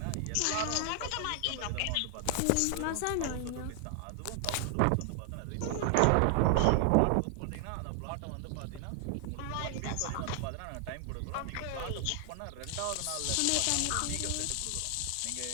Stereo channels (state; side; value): different; both; correlation 0.00